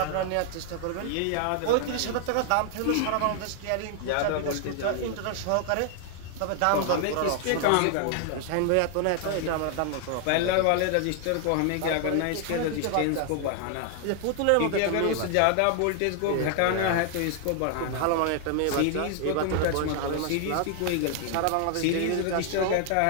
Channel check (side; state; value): both; different; correlation 0.00